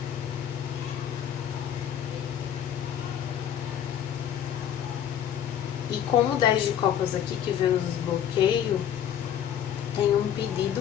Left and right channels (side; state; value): right; quieter; 9.7 dB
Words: E com o 10 de copas aqui, que vem nos desbloqueio, tem um pedido